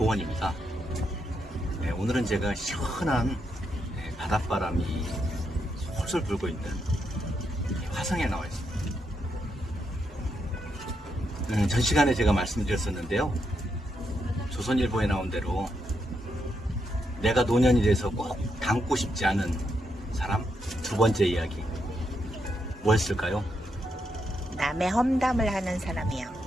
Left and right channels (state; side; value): normal; both; correlation 0.81